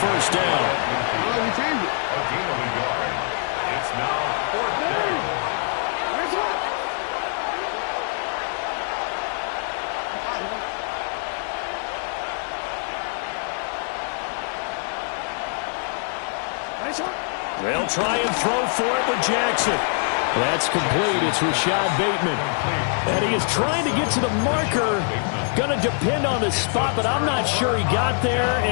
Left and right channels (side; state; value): right; silent; 63 dB below the other